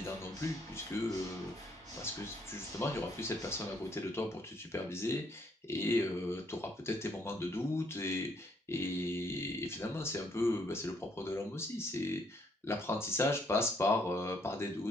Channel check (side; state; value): both; normal; correlation 0.69